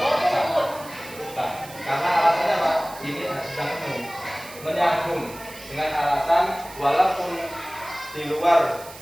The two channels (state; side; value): noise; right; hiss, 17 dB below the sound